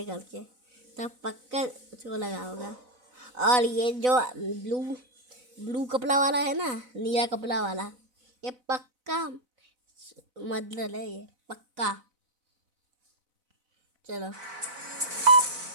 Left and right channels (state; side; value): late; left; 4.0 ms